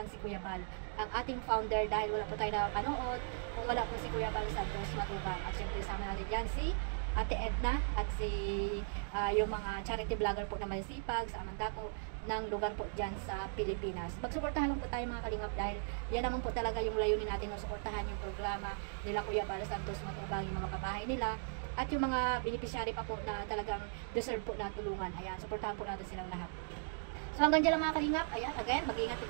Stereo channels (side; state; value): left; silent; digital silence